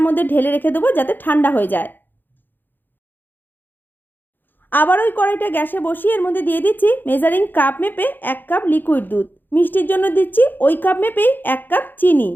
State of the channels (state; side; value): late; right; 0.091 ms